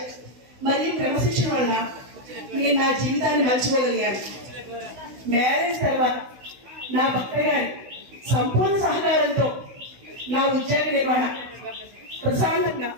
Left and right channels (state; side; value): late; left; 16 ms